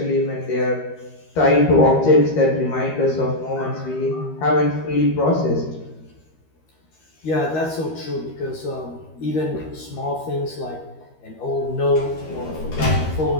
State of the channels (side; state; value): right; late; 13 ms